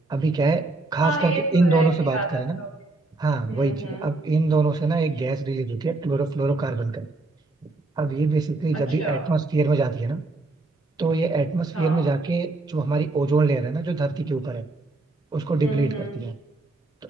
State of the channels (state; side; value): quieter; left; 3.1 dB